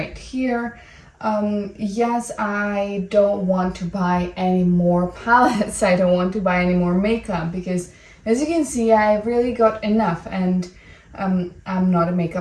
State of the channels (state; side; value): identical; both; correlation 1.00